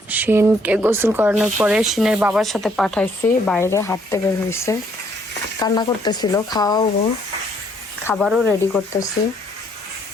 শিনকে গোসল করানোর পরে শিনের বাবার সাথে পাঠাইছি, বাইরে হাঁটতে বের হয়েছে, কান্না করতেছিল। খাওয়াবো, খাবারও রেডি করতেছি।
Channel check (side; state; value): both; normal; correlation 0.67